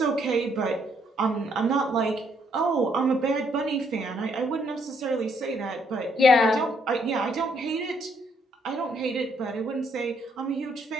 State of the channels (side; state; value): both; normal; correlation 0.71